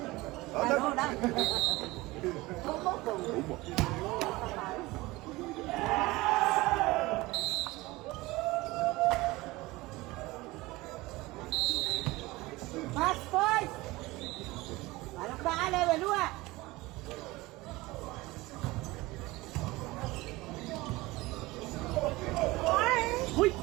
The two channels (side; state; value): left; quieter; 20.6 dB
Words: Ano na? Mas boys! Parang baala, walua! Uy!